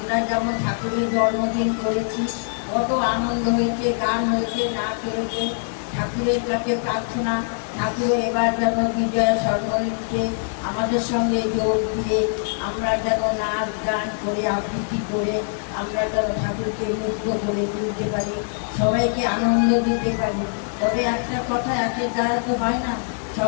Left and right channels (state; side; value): silent; right; digital silence